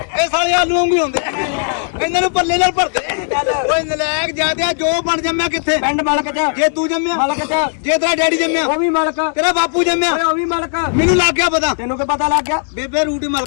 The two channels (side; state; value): right; silent; digital silence